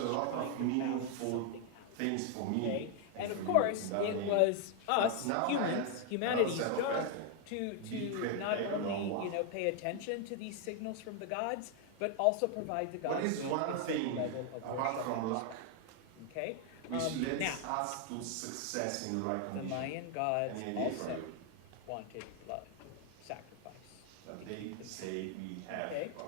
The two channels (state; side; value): different; both; correlation 0.00